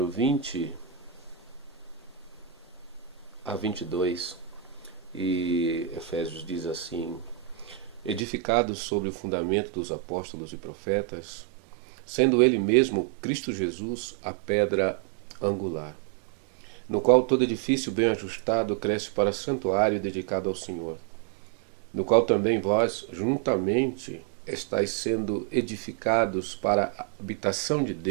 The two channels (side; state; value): left; drops out; at 8.2 s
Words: 20 a 22. E Efésios diz assim: edificados sobre o fundamento dos apóstolos e profetas, sendo ele mesmo Cristo Jesus a pedra angular, no qual todo edifício bem ajustado cresce para santuário dedicado ao Senhor, no qual também vós juntamente estáis sendo edificados para a habitação de